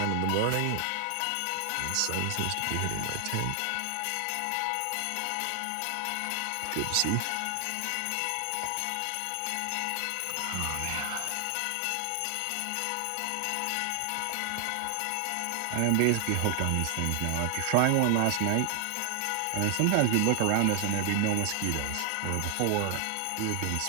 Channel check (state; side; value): different; both; correlation 0.00